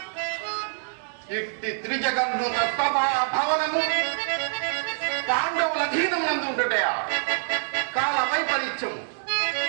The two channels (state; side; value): silent; left; 61 dB below the other